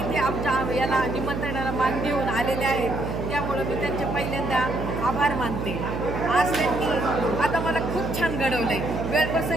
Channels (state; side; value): noise; right; hum, 4 dB below the sound